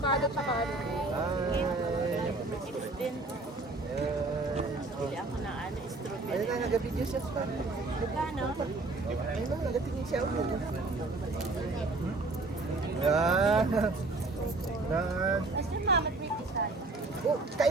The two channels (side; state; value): left; quieter; 3.2 dB